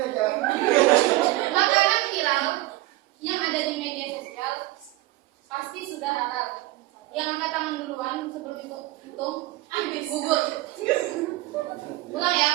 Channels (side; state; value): left; quieter; 18.5 dB